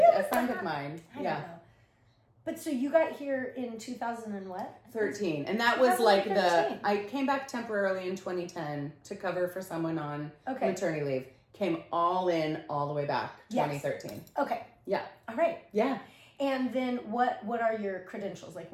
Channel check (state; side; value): identical; both; correlation 1.00